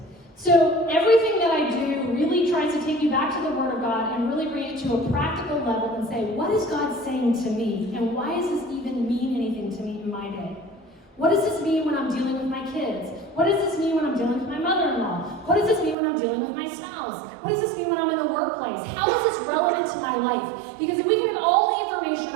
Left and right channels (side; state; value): left; drops out; at 16.0 s